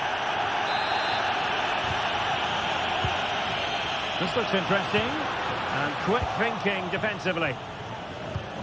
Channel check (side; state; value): both; identical; correlation 1.00